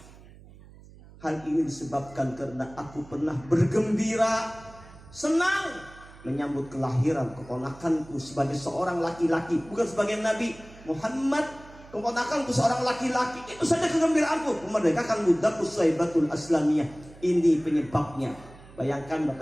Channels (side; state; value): right; noise; hum, 21 dB below the sound